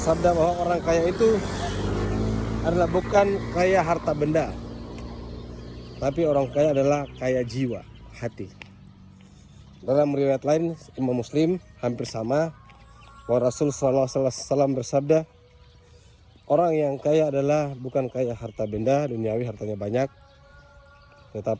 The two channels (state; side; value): identical; both; correlation 1.00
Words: bahwa orang kaya itu adalah bukan kaya harta benda, tapi orang kaya adalah kaya jiwa, hati. Dalam riwayat lain Imam Muslim hampir sama, bahwa Rasul SAW bersabda, orang yang kaya adalah bukan kaya harta benda duniawi, hartanya banyak,